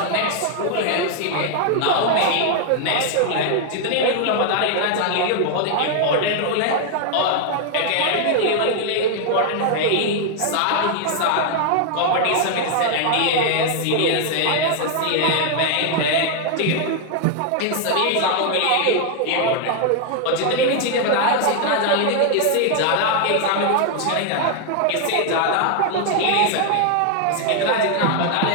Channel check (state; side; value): different; both; correlation 0.00